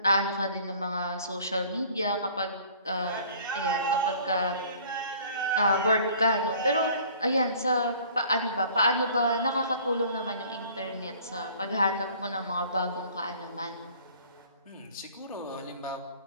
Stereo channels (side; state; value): both; inverted; correlation -0.52